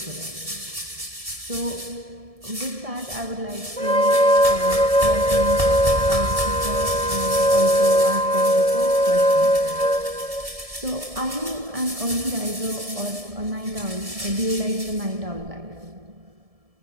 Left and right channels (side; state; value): left; late; 1.7 ms